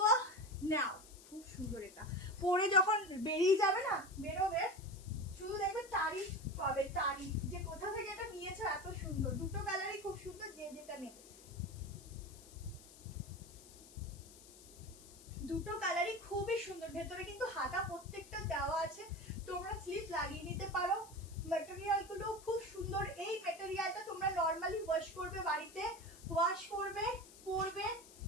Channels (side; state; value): left; noise; hiss, 20 dB below the sound